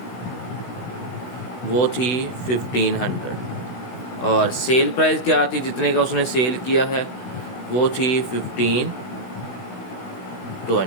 वो थी 1500 और सेल प्राइस क्या थी, जितने का उसने सेल किया है वो थी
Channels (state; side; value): late; right; 16 ms